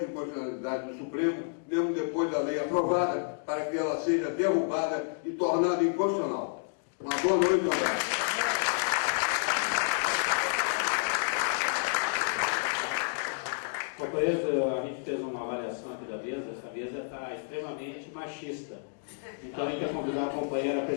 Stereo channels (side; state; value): right; silent; digital silence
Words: de inconstitucionalidade do Supremo, mesmo depois da lei aprovada, para que ela seja derrubada e tornada inconstitucional. Uma boa noite, um abraço. Companheiros, a gente fez uma avaliação aqui da mesa, essa mesa está extremamente machista. Então a gente vai convidar a companheira